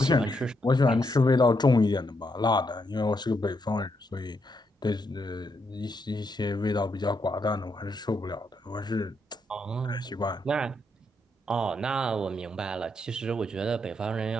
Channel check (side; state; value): both; normal; correlation 0.79